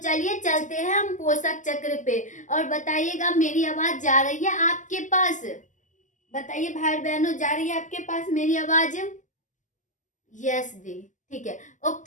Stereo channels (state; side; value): late; right; 0.37 ms